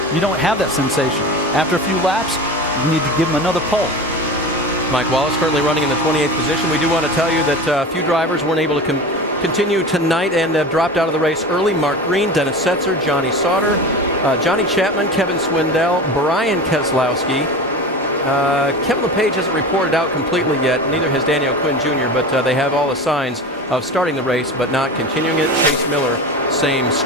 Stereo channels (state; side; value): normal; both; correlation 0.31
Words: you don't have that sensation. After a few laps, you need to give him another pull. Mike Wallace currently running in the 28th position. We do want to tell you that a few drivers weren't able to continue tonight and have dropped out of the race early. Mark Green, Dennis Setzer, Johnny Sauter, Johnny Chapman, Kevin Swindell, Brian Keselowski. Kevin LePage hasn't reported out completely yet. Neither has Daniel Quinn Jr., but they have all the signs of starting the race but not continuing it. Chase Miller, same